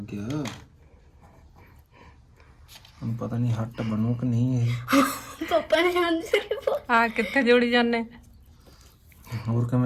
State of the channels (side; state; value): both; identical; correlation 1.00